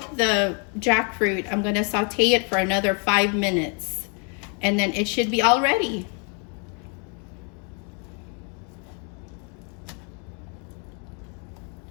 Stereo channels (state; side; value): quieter; right; 37.5 dB